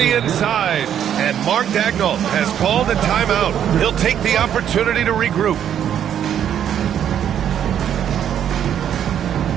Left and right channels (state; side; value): quieter; left; 9.6 dB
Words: inside. And Mark Daigneault has called a timeout. He'll take the opportunity to regroup.